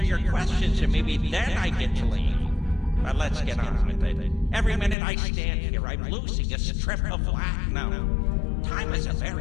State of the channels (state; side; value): drops out; right; at 5.0 s